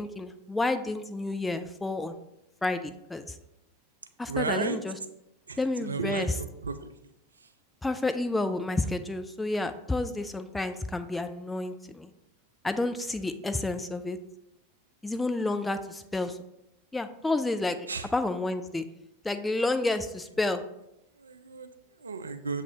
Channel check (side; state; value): both; normal; correlation 0.71